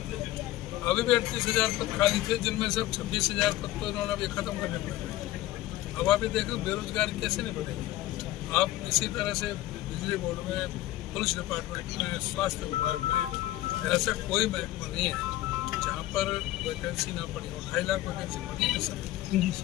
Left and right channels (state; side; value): quieter; right; 15.7 dB